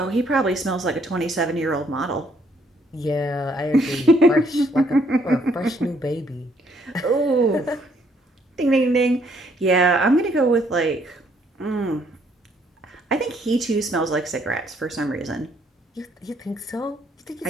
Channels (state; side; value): normal; both; correlation 0.68